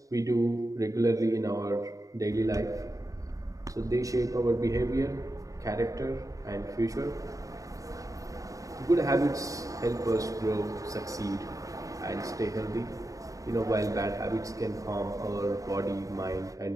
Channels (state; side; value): late; left; 0.16 ms